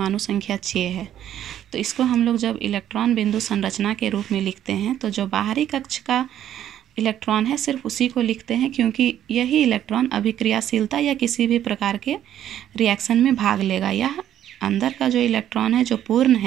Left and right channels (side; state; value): left; quieter; 11.1 dB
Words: संख्या 6 है। तो इसको हम लोग जब इलेक्ट्रॉन बिंदु संरचना के रूप में लिखते हैं तो जो बाहरी कक्ष का इलेक्ट्रॉन है सिर्फ उसी को लिखते हैं, क्योंकि यही इलेक्ट्रॉन अभिक्रियाशीलता या किसी भी प्रकार के रिएक्शन में भाग लेगा। यह अंदर का जो इलेक्ट्रॉन है जो पूर्ण